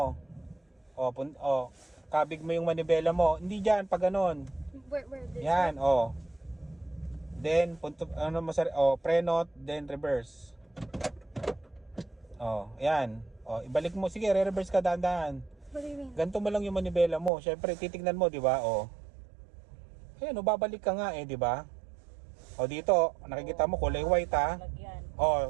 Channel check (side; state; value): left; drops out; at 17.3 s